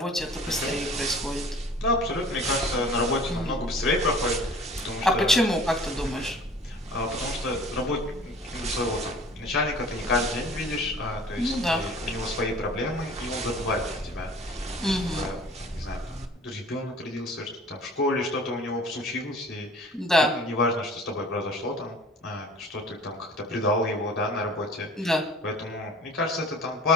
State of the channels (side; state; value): both; normal; correlation 0.47